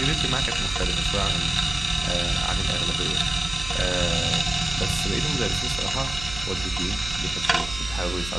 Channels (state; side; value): noise; right; hum, 11 dB below the sound